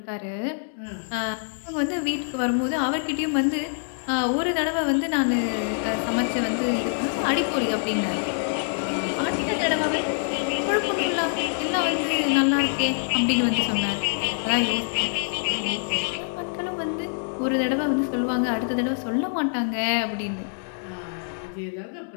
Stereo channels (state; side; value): silent; right; 62 dB below the other